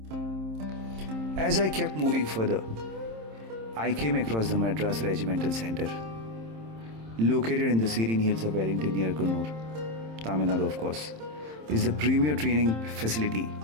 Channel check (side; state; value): left; late; 27 ms